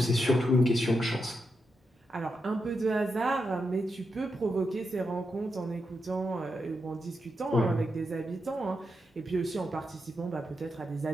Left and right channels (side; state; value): both; normal; correlation 0.85